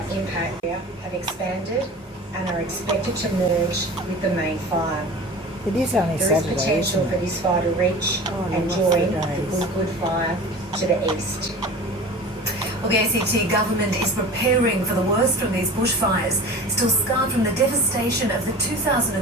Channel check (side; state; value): both; normal; correlation 0.37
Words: impact area have expanded and are expected to merge with the main fire. It is only There Saturday, is potential isn't for it? this fire to reach and lost join the the days. Good fire to the east. Well, the ACT government is preparing for the worst from these bushfires, still scarred from the devastation of the